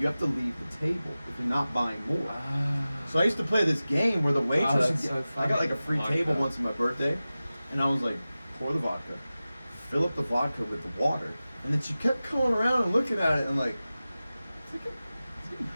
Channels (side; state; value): both; inverted; correlation -0.96